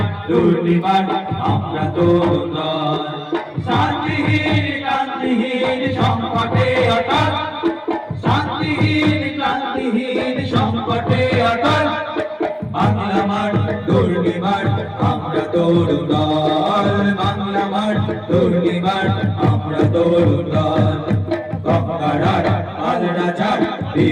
দুর্নিবার আমরা তরু দল শান্তিহীন ক্রান্তিহীন সংকটে অটল শান্তিহীন ক্রান্তিহীন সংকটে অটল বাংলা মাঠ দুর্নিবার আমরা তরু দল বাংলা মাঠ দুর্নিবার আমরা তরু দল গঙ্গারার পাল রাজার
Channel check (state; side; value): identical; both; correlation 1.00